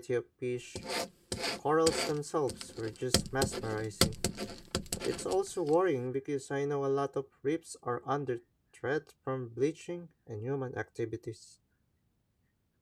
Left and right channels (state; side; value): identical; both; correlation 1.00